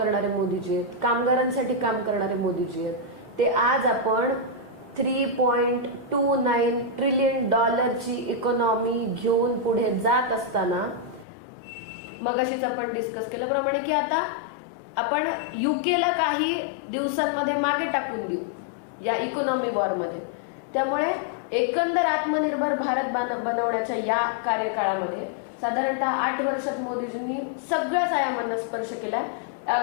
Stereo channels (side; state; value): right; drops out; at 11.2 s